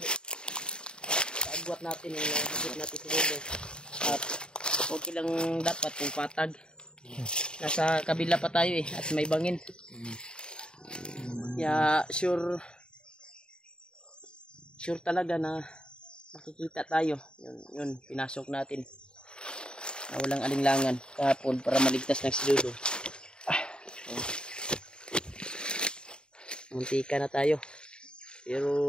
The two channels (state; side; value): late; right; 0.049 ms